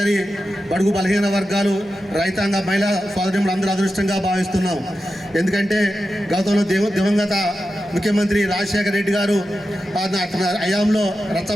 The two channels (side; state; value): both; normal; correlation 0.91